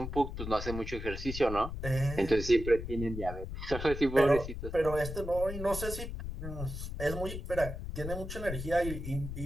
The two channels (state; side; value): noise; left; rumble, 7 dB below the sound